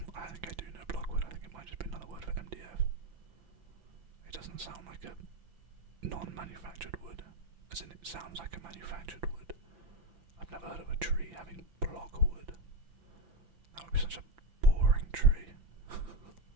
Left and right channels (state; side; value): late; left; 5.9 ms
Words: I think I do know blockwood. I think it might just be another word for MDF. It doesn't sound like a non-manufactured wood, as in it sounds like a manufactured wood. I've never heard of a tree having blockwood. That would be such a boring tree.